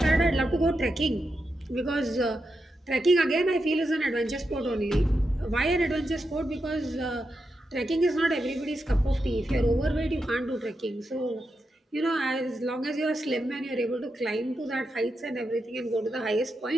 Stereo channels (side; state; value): both; normal; correlation 0.87